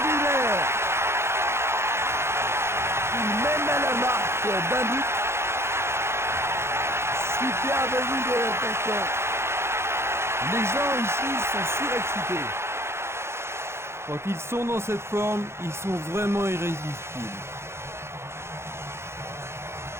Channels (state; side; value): late; left; 0.12 ms